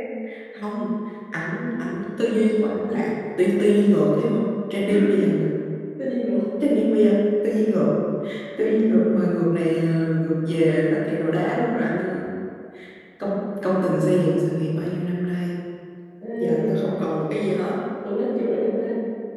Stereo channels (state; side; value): identical; both; correlation 1.00